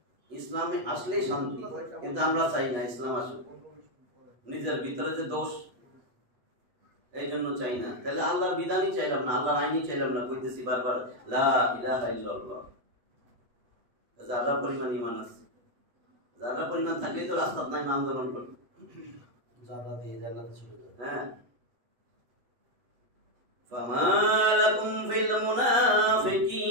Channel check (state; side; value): late; left; 8.1 ms